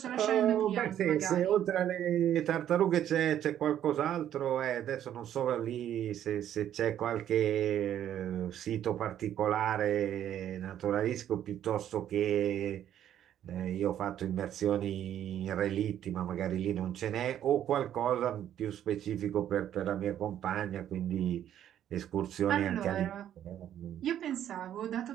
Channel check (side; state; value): left; quieter; 10.8 dB